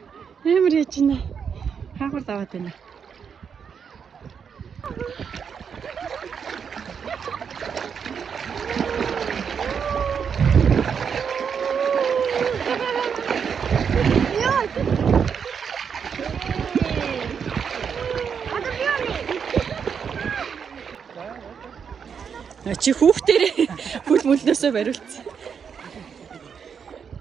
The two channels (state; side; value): quieter; left; 6.9 dB